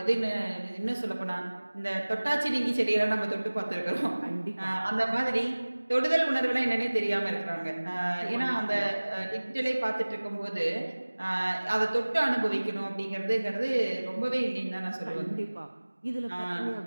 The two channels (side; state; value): both; inverted; correlation -1.00